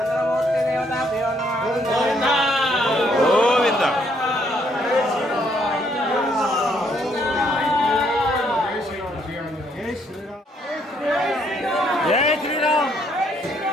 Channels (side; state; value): both; normal; correlation 0.70